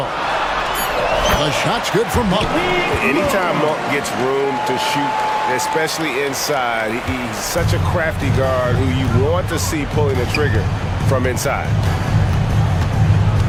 The shot's good for Monk. Anytime Monk gets room to shoot, especially inside, he's such a crafty guard who you want to see pulling the trigger from inside.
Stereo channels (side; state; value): both; identical; correlation 1.00